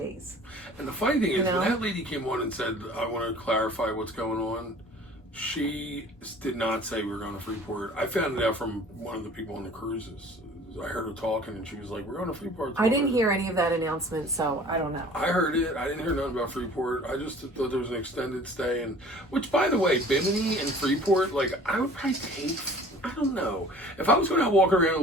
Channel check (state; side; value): normal; both; correlation 0.48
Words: And the funny thing is, when that lady came on and said, I want to clarify what's going on, she did not say we were going to Freeport. I found it out from one of the people on the cruises. I heard her talking and she was like, we're going to Freeport. I didn't hear any of that announcement, so I don't know. I heard it. I didn't hear nothing about Freeport. I just thought there was an extended stay. And which, by the way, Bimini and Freeport, like, I would probably take, I don't know. If I was going to walk around and